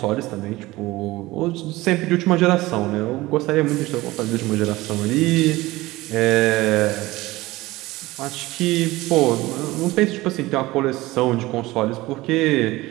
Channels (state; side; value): quieter; left; 19.1 dB